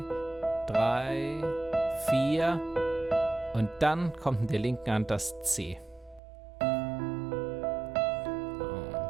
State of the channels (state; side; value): drops out; left; at 6.2 s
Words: 3, 4 und dann kommt in der linken Hand das C. Und